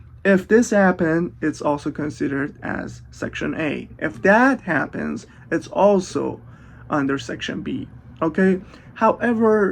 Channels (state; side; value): identical; both; correlation 1.00